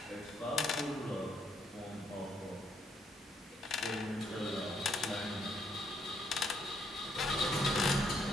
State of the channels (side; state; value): both; normal; correlation 0.72